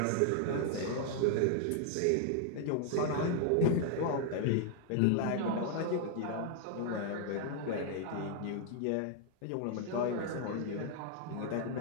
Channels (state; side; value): different; both; correlation 0.00